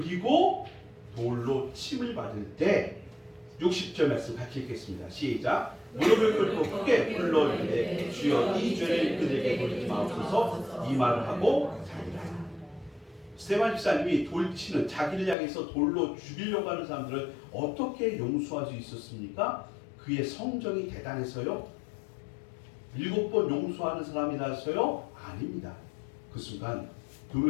돌로 침을 받을 때 60절 말씀 같이 읽겠습니다. 시작. 무릎을 꿇고 크게 불러 이르되 주여 이 죄를 그들에게 돌리지 마옵소서 이 말을 하고 자기라. 스데반 집사님이 돌치는 자기를 향해서 돌로 죽이려고 하는 사람들을 어떻게 용서할 수 있었습니까? 그의 성정이 대단해서요? 7번 용서하는 사람이라서요? 아닙니다. 그 순간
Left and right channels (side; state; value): right; drops out; at 15.4 s